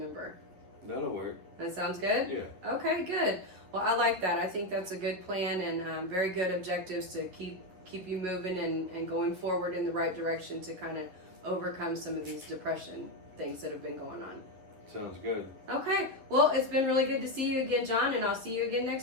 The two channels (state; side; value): late; left; 11 ms